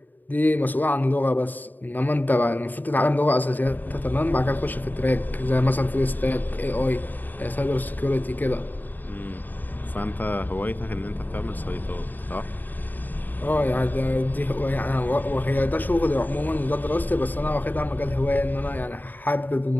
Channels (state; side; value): late; right; 0.087 ms